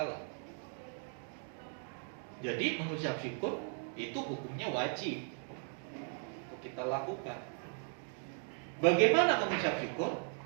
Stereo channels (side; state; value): left; silent; 53 dB below the other